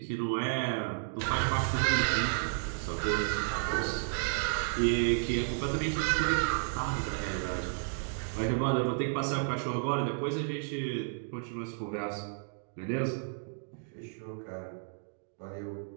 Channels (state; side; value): silent; left; digital silence